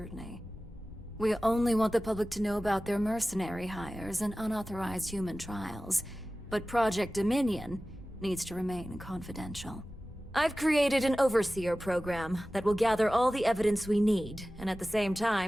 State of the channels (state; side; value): normal; both; correlation 0.96